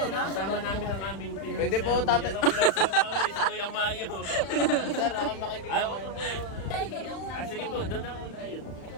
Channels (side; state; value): right; late; 35 ms